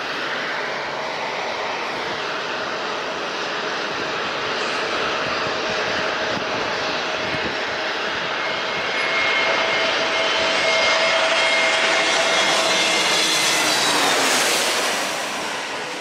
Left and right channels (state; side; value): identical; both; correlation 1.00